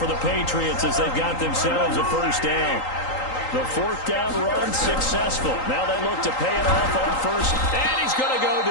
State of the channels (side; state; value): right; late; 3.8 ms